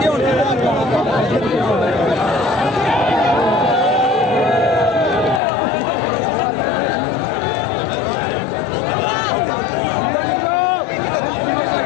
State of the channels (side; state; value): right; drops out; at 5.4 s